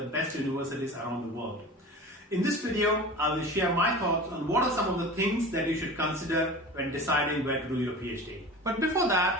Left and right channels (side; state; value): both; normal; correlation 0.35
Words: best universities around the world. In this video, I will share my thoughts on what are some of the things that you should consider when deciding where to do your PhD. But before